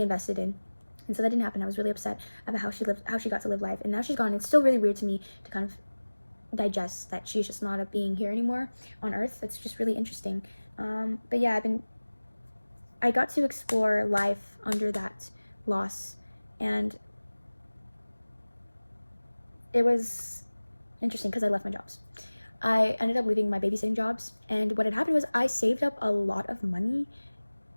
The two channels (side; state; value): both; inverted; correlation -1.00